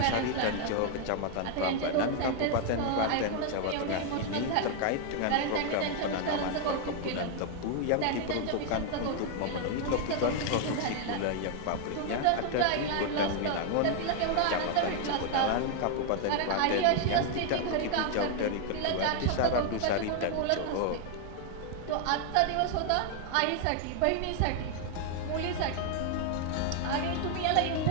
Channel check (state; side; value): different; both; correlation 0.00